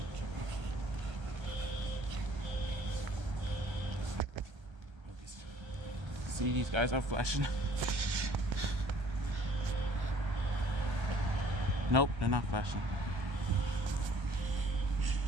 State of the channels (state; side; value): late; left; 1.3 ms